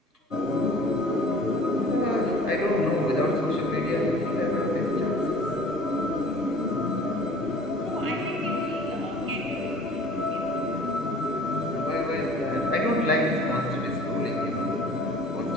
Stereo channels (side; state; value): both; normal; correlation 0.47